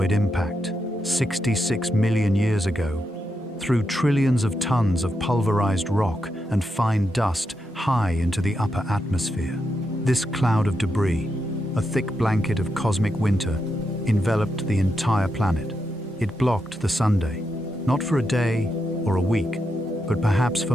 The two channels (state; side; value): normal; both; correlation 0.84